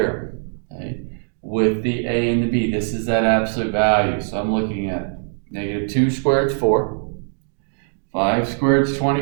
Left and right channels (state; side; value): silent; left; digital silence